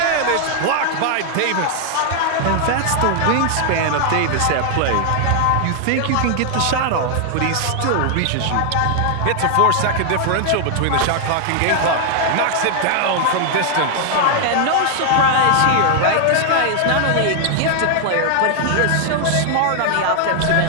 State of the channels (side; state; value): both; different; correlation 0.00